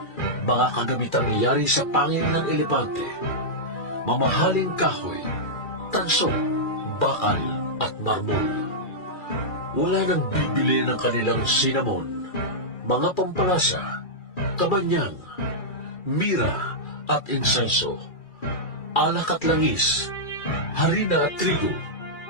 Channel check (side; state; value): right; late; 2.4 ms